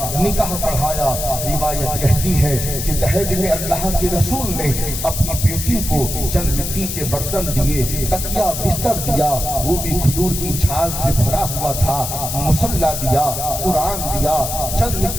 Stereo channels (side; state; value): left; noise; hiss, 5 dB below the sound